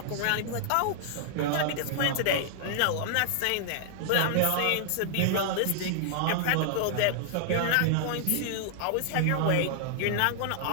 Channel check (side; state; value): both; different; correlation -0.01